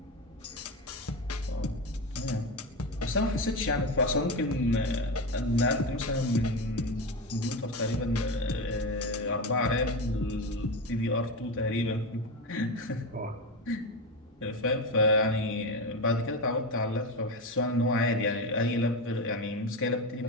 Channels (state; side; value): normal; both; correlation 0.18